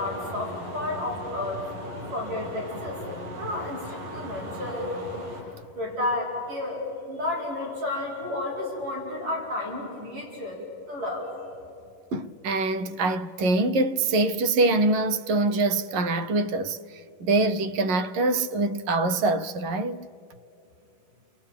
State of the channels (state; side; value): late; left; 11 ms